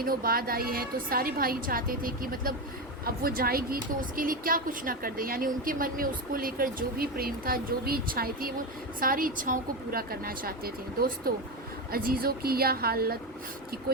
बाद आई है तो सारे भाई चाहते थे कि मतलब अब वो जाएगी तो उसके लिए क्या कुछ ना कर दे। यानी उनके मन में उसको लेकर जो भी प्रेम था, जो भी इच्छाएं थी, वो सारी इच्छाओं को पूरा करना चाहते थे। दोस्तों, अजीज़ों की यह हालत कि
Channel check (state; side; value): normal; both; correlation 0.15